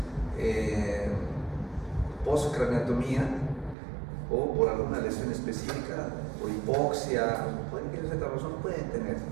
postcraneotomía o por alguna lesión específica, por hipoxia, por cualquier otra razón, pueden tener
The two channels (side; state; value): left; drops out; at 3.8 s